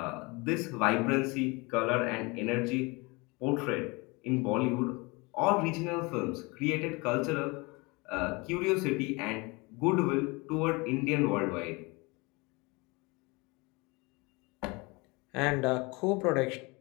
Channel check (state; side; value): quieter; right; 26.5 dB